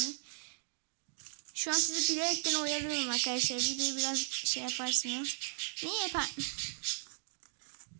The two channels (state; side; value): silent; left; digital silence